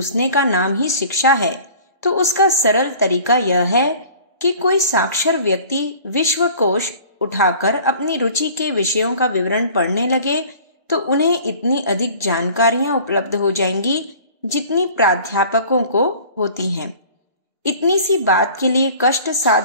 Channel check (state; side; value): inverted; both; correlation -0.46